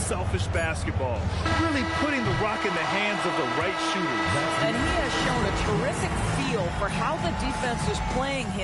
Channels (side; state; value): both; identical; correlation 1.00